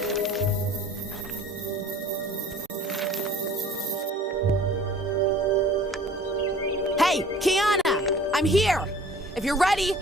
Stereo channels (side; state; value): both; normal; correlation 0.48